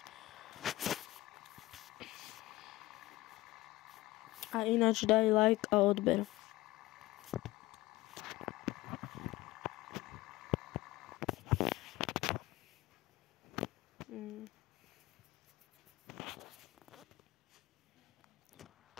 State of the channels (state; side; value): quieter; right; 18.2 dB